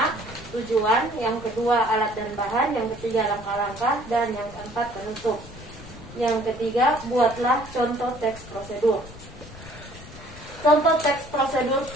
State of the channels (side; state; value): left; noise; rumble, 17 dB below the sound